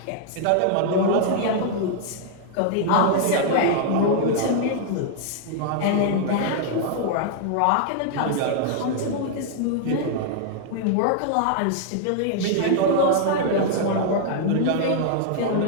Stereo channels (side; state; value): both; different; correlation 0.00